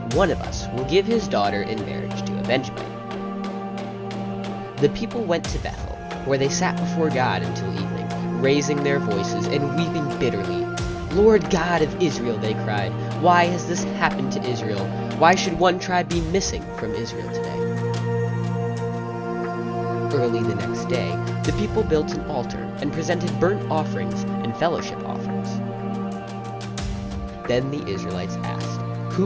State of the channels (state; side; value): identical; both; correlation 1.00